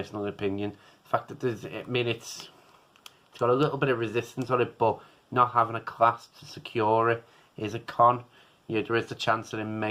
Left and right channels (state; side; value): identical; both; correlation 1.00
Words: opinion, the fact that it's got a little bit of resistance on it, but not having a clasp to secure it is a con. Yeah, there is a chance that it